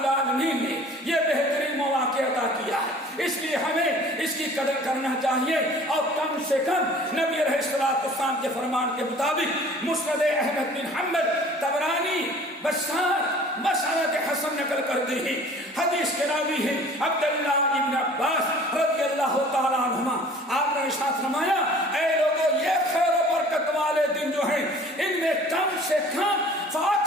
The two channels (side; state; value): both; normal; correlation 0.48